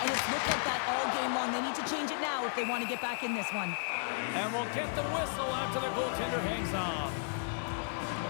it's looked like that all game long. They need to change it now if they want to get back in this one. And we'll get the whistle after the goaltender hangs on.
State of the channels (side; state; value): right; silent; 55 dB below the other